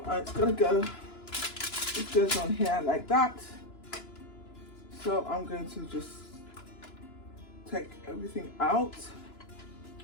it's going to go, it goes on here like that. So I'm going to just take everything out,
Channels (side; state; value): right; late; 2.9 ms